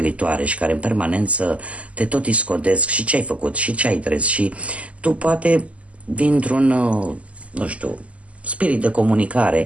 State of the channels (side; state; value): left; late; 0.064 ms